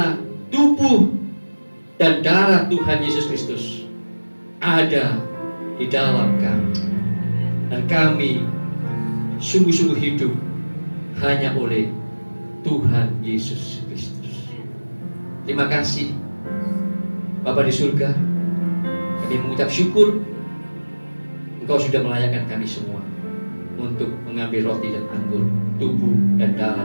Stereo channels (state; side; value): inverted; both; correlation -1.00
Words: tubuh dan darah Tuhan Yesus Kristus ada di dalam kami, dan kami sungguh-sungguh hidup hanya oleh Tuhan Yesus Kristus. Terima kasih Bapa di surga, kami mengucap syukur Engkau sudah melayakkan kami semua untuk mengambil roti dan anggur, tubuh dan